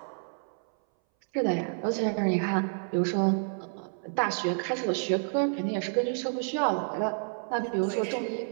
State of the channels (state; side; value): silent; left; 58 dB below the other